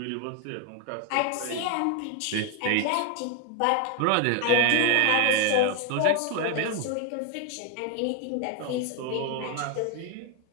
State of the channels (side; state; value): both; different; correlation 0.01